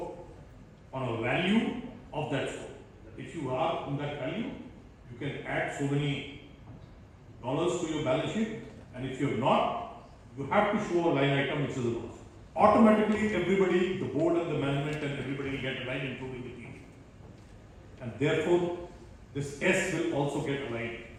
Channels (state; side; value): identical; both; correlation 1.00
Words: on a value of that score. If you are in that value, you can add so many dollars to your balance sheet, and if you are not, you have to show a line item which is a loss. Automatically, everybody, the board and the management and everybody will get aligned, including the team. And therefore, this S will also get aligned.